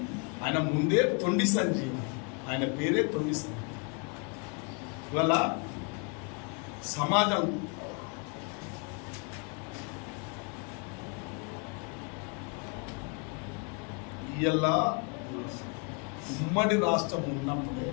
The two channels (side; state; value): right; quieter; 35.6 dB